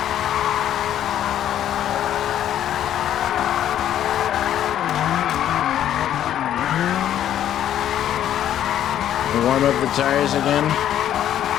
Warm up the tires again.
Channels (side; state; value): right; quieter; 11.0 dB